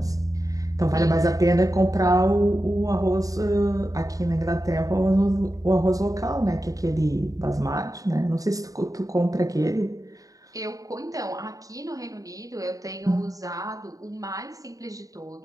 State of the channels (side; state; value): left; late; 0.17 ms